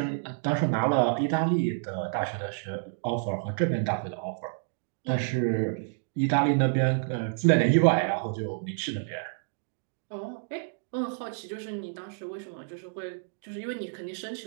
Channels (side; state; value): left; silent; digital silence